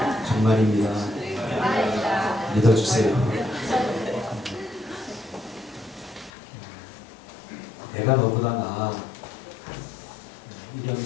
정말입니다. 믿어주세요. 내가 너보다 나아. 이런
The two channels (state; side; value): drops out; right; at 6.3 s